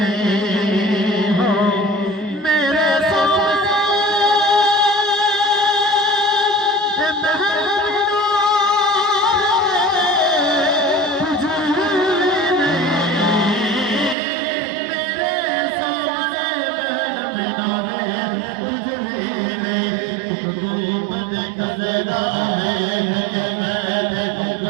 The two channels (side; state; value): left; drops out; at 14.2 s